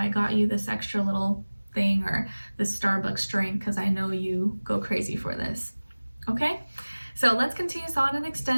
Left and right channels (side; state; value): both; inverted; correlation -1.00